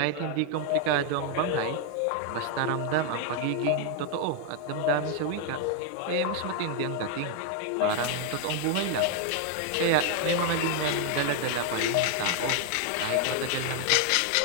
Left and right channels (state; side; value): different; both; correlation 0.00